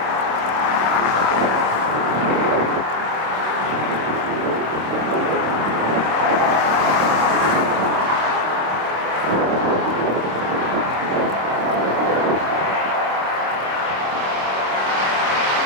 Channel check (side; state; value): left; late; 26 ms